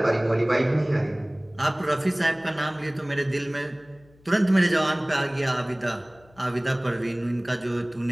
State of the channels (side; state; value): left; noise; hum, 28 dB below the sound